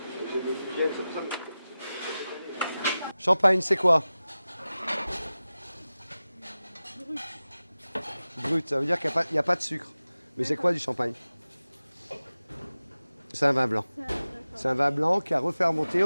Champagne, c'est quoi? Brut, ça veut dire qu'il n'y a pas de sucre. Mais c'est quoi du champagne? C'est un vin blanc. C'est un vin blanc qui a refermenté,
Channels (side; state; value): both; inverted; correlation -0.95